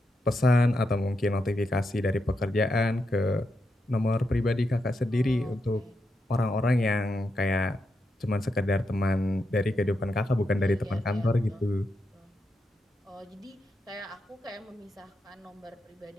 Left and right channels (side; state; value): both; normal; correlation 0.85